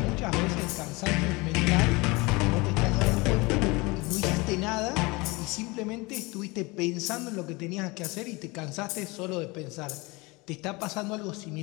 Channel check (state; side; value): quieter; right; 24.8 dB